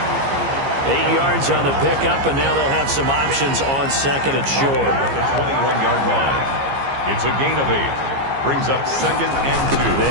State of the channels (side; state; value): left; late; 15 ms